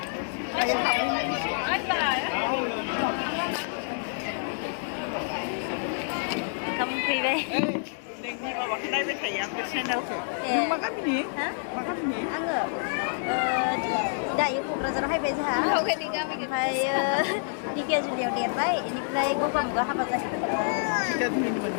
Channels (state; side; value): silent; right; digital silence